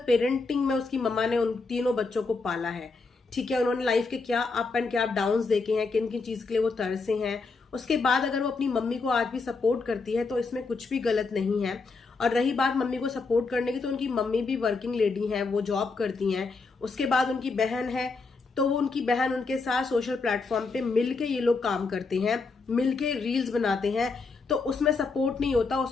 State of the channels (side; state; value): right; quieter; 4.1 dB